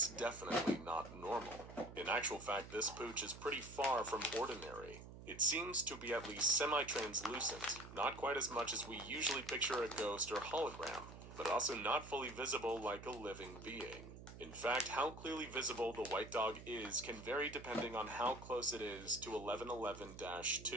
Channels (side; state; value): right; noise; hum, 14 dB below the sound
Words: definitely not normal. In actual fact, this pooch is pretty far from ordinary. It seems to be at least semi-translucent, not quite as much as we usually picture a ghost or hologram, but also not fully visible like a living being. In fact, how clearly visible the White Dog is can vary depending on how close it is to